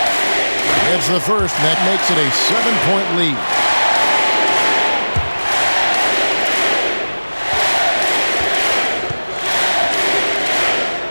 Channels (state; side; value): inverted; both; correlation -1.00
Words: It's the first, and that makes it a 7-point lead.